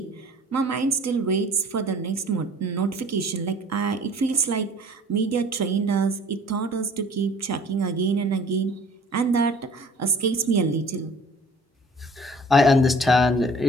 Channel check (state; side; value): normal; both; correlation 0.50